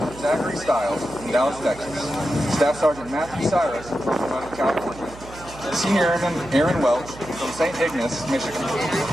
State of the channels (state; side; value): noise; right; hum, 17 dB below the sound